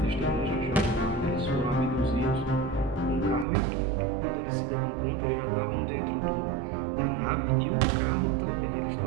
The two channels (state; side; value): drops out; left; at 3.5 s